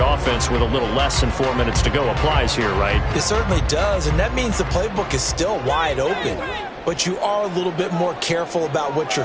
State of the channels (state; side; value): identical; both; correlation 1.00